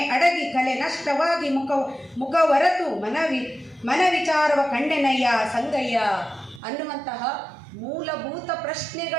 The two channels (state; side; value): drops out; left; at 6.6 s